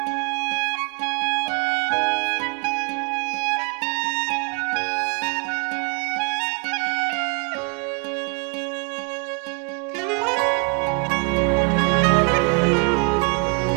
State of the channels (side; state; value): left; quieter; 37.3 dB